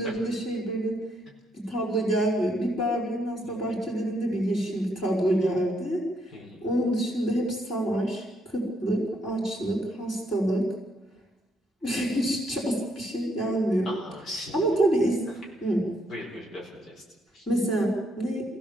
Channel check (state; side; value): normal; both; correlation 0.74